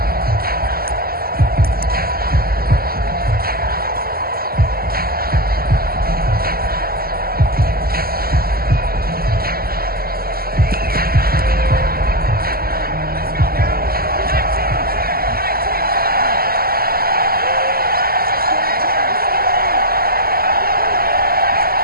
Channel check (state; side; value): late; left; 0.44 ms